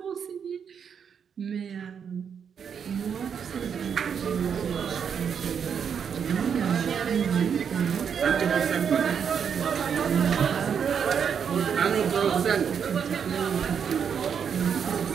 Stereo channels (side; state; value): left; quieter; 7.3 dB